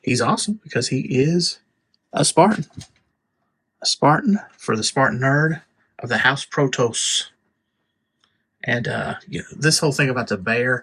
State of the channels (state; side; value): identical; both; correlation 1.00